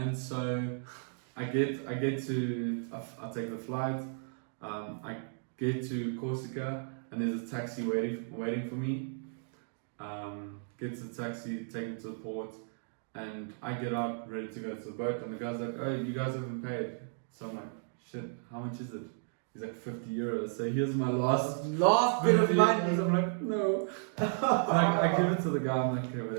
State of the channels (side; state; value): left; silent; digital silence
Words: so I get to I take the flight. I get to Corsica and there's a taxi waiting for me. Get to the taxi, take me to the port, and I get out ready to go to the boat. And the guy's like, "Oh, you guys haven't paid." So I'm like, "Shit, how much is it?" He's like 50 euros. So here's my last bit of money. I'm like, no. I give it to the guy. I'm like, okay,